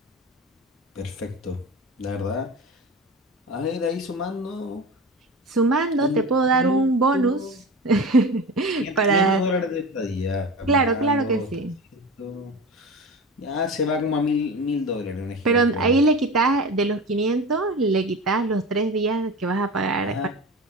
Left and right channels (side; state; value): both; normal; correlation 0.30